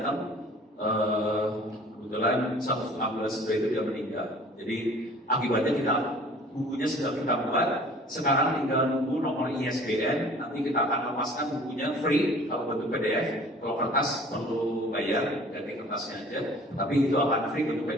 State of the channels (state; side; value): normal; both; correlation 0.49